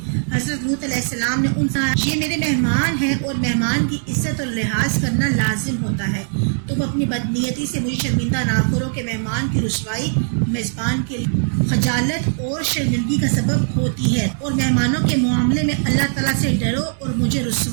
حضرت لوط علیہ السلام نے ان سے یہ میرے مہمان ہیں اور مہمان کی عزت اور لحاظ کرنا لازم ہوتا ہے، تم اپنی بدنیتی سے مجھے شرمندہ نہ کرو کہ مہمان کی رسوائی میزبان کے لیے خجالت اور شرمندگی کا سبب ہوتی ہے، اور مہمانوں کے معاملے میں اللہ تعالیٰ سے ڈرو اور مجھے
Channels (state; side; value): silent; left; 65 dB below the other